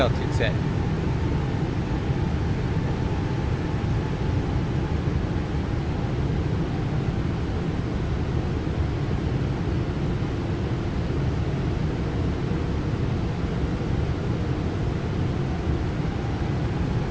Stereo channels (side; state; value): both; identical; correlation 1.00